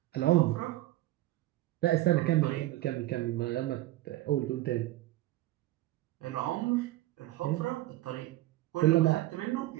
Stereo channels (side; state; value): left; quieter; 16.6 dB